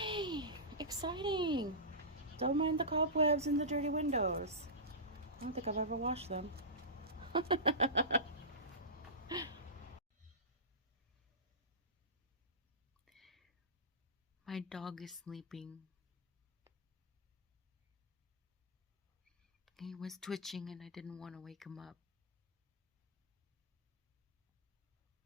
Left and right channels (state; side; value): normal; both; correlation -0.18